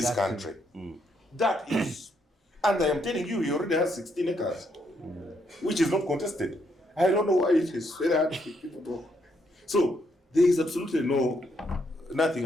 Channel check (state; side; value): normal; both; correlation 0.75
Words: country. That is, and I am telling you, he already has 16 acres, which is not contested. I don't know why it is very hard to people talk. So there is absolutely nothing